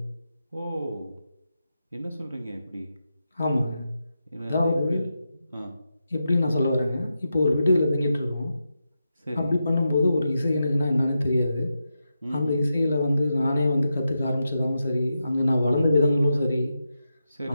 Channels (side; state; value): both; inverted; correlation -0.88